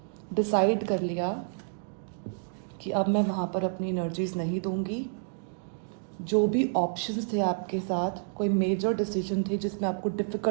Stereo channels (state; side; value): silent; left; digital silence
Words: डिसाइड कर लिया कि अब मैं वहाँ पर अपनी एनर्जीज नहीं दूंगी. जो भी ऑप्शंस थे आपके साथ, कोई मेजर डिसीजन थे जिसमें आपको